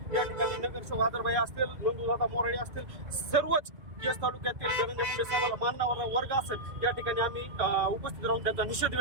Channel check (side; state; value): left; late; 2.5 ms